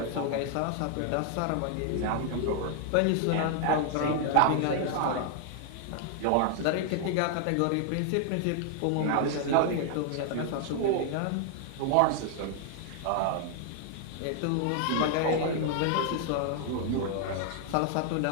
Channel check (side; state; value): both; different; correlation 0.00